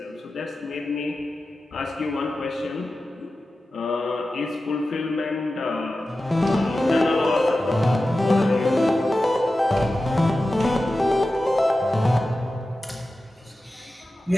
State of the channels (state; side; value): normal; both; correlation 0.94